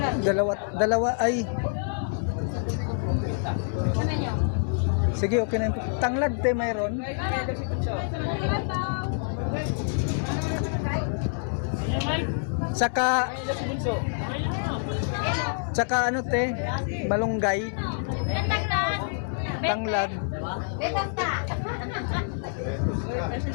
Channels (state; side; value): silent; right; 60 dB below the other